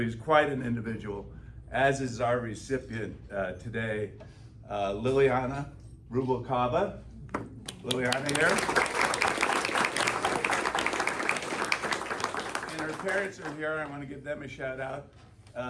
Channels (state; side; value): identical; both; correlation 1.00